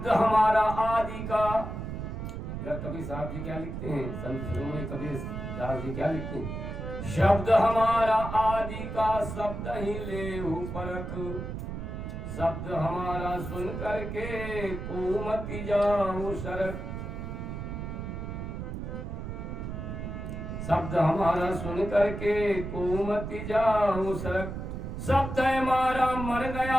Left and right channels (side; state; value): right; noise; rumble, 6 dB below the sound